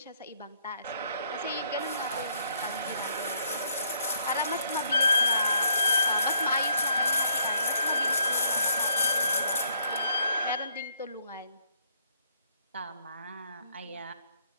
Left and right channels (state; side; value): inverted; both; correlation -0.68